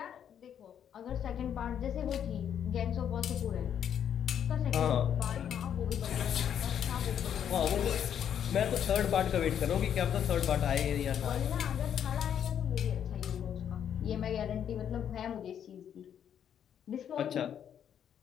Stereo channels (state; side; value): quieter; right; 9.0 dB